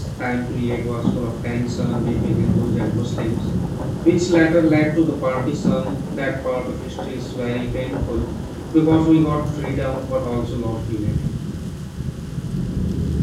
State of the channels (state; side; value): identical; both; correlation 1.00